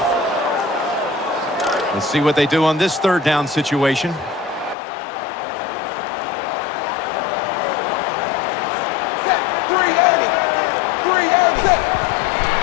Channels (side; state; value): right; drops out; at 4.8 s